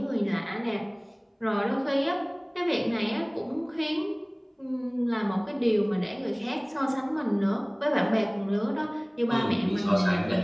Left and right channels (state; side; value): identical; both; correlation 1.00